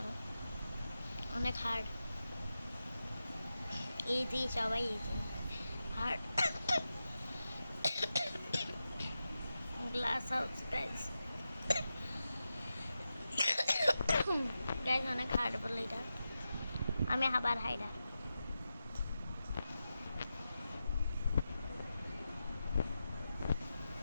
অনেক হার্ড। ইজি, সবাই easy. Hard glass house guys, guys অনেক হার্ড বলে এটা। আমি আবার হাইডার।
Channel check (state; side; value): inverted; both; correlation -0.91